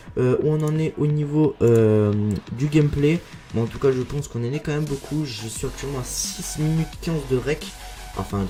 où on en est au niveau du gameplay, mais en tout cas je pense qu'on en est quand même beaucoup. Je suis actuellement à 6 minutes 15 de rec, enfin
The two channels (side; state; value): both; identical; correlation 1.00